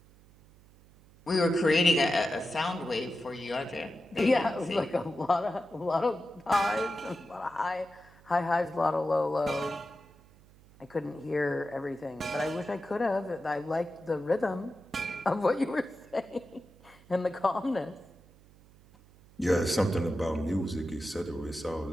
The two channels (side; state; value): right; noise; hum, 26 dB below the sound